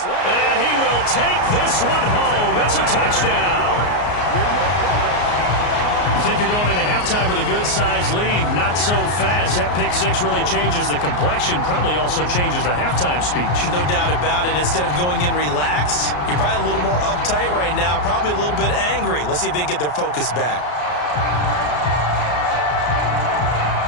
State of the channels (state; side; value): late; right; 33 ms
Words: And he will take this one home. It's a touchdown. You think you're going into halftime? halftime with a good-sized lead. Not so fast. That pick six really changes the complexion. Probably also changes the halftime speech. No doubt about it. Instead of going in relaxed, you're probably a little more uptight right now. Probably a little bit angry. Let's see if they can get their focus back.